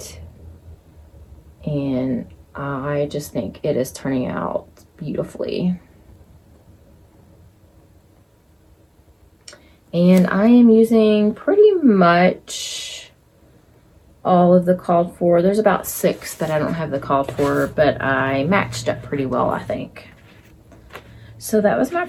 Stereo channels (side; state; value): both; identical; correlation 1.00